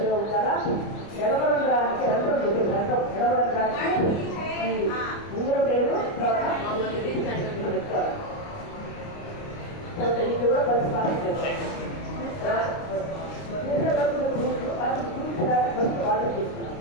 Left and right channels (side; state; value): right; late; 29 ms